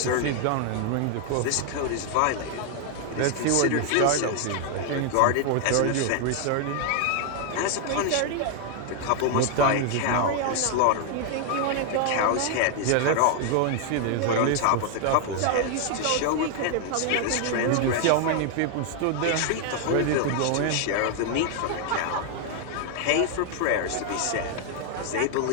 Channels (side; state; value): both; different; correlation 0.00